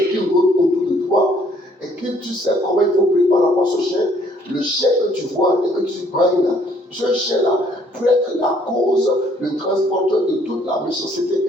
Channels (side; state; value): both; normal; correlation 0.63